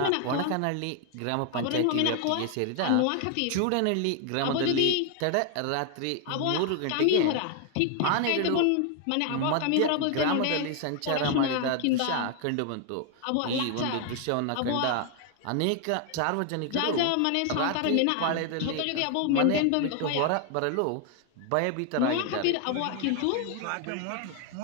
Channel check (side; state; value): both; different; correlation 0.00